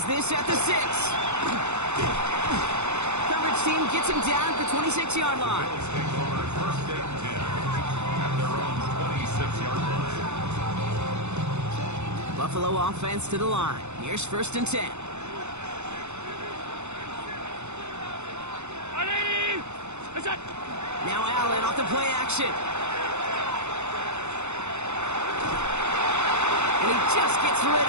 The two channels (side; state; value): left; late; 0.82 ms